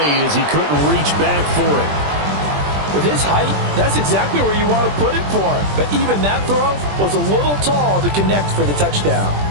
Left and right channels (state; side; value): late; left; 20 ms